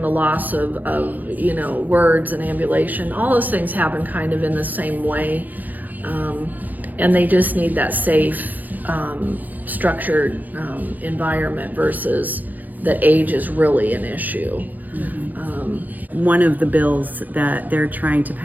loss of you know, words and ambulation, all those things happen kind of in the same way. And they just need that safe, structured environment versus that age is really an issue. One of the bills that they're trying to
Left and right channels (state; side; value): late; left; 0.083 ms